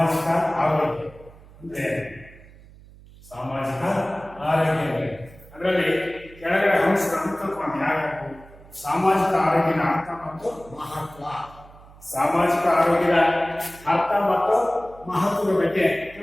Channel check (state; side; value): noise; right; hum, 22 dB below the sound